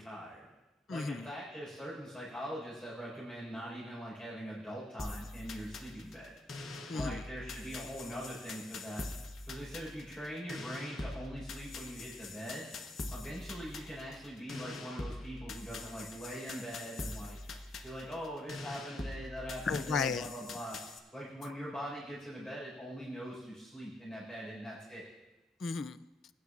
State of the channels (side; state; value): both; normal; correlation 0.77